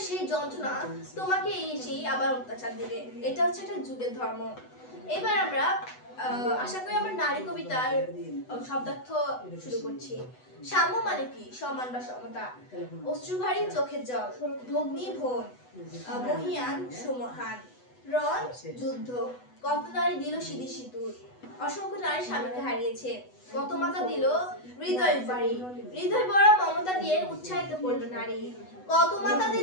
সেই যন্ত্রণা তোমাকে এসেই আবার অত্যাচার দিবে। এটা হচ্ছে একটা যুগের ধর্ম। এবার আমরা আশা করি আমরা নারী কবিতার শব্দার্থ শুরু করছি। সাম্য মানে কি? সমান বা সমতা। অশ্রুভারী চোখের জল, ভগ্নী ভোন, মহিয়ান সুমহান, রণ যুদ্ধ, কত নারী দিল সিঁদি সিঁদুর, অসংখ্য নারী স্বামীকে হারিয়েছে, কত মাতা দিল হৃদয় বাড়ি, হৃদয় বড় মমতা দিয়ে উৎসাহিত করলো নারী, কত মাতা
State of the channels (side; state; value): right; late; 8.0 ms